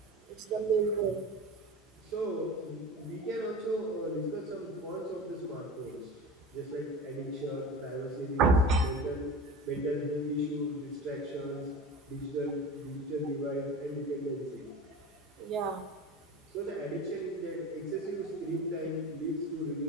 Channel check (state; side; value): normal; both; correlation 0.32